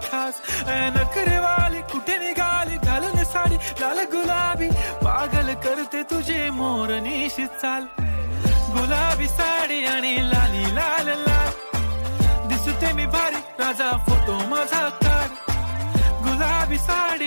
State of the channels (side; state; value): both; inverted; correlation -1.00